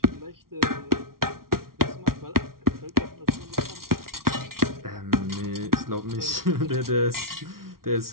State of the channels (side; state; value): left; late; 0.93 ms